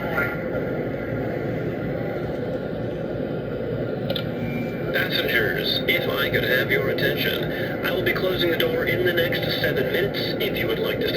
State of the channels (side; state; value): both; identical; correlation 1.00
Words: board. Passengers, if I could have your attention, I will be closing the door in the next 7 minutes. If you would like to